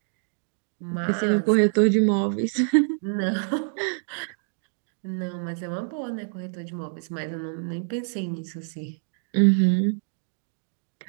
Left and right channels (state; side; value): silent; left; digital silence